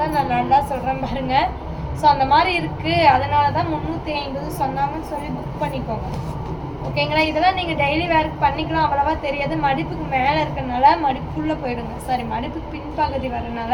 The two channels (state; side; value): identical; both; correlation 1.00